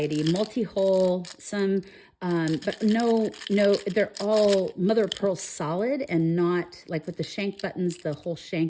multi-hole, some, but no, they're all mother of pearl solid, and not like with the shank buttons, the whole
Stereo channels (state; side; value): identical; both; correlation 1.00